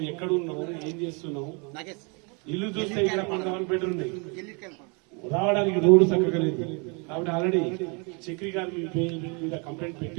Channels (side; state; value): left; quieter; 33.3 dB